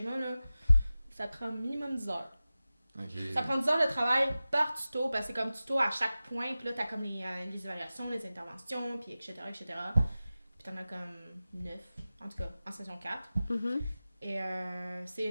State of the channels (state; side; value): inverted; both; correlation -0.96